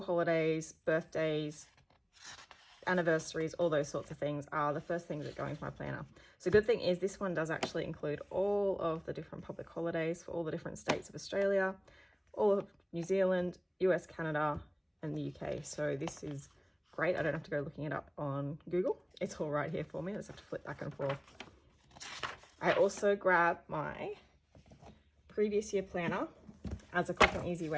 holidays, birthdays, anniversaries, all those sorts of things are the first things that go into my planner. So the good thing is this one does actually include all of the different public holidays for all the different states of Australia, all of New Zealand, US, Canada, and the UK. So this is great. I don't have to go looking it up on Google. It's all right here for me. I just have to flip back and forth. I also grab my previous year planner as a quick and easy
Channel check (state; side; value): identical; both; correlation 1.00